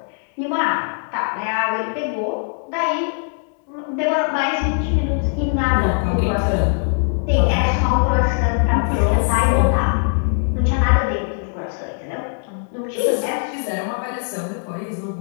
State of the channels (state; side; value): silent; right; 58 dB below the other